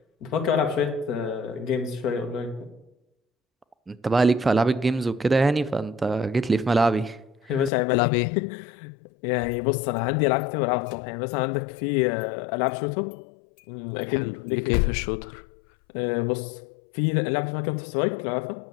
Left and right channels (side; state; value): right; drops out; at 7.7 s